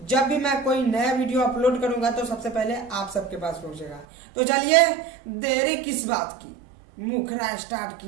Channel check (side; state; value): left; drops out; at 4.0 s